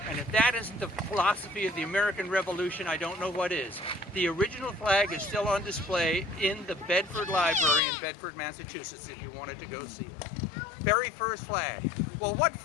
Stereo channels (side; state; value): right; drops out; at 7.8 s